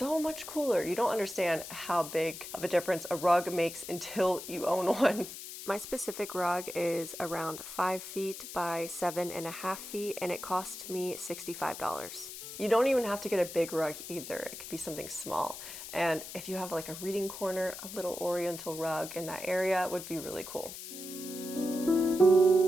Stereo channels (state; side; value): noise; left; hiss, 10 dB below the sound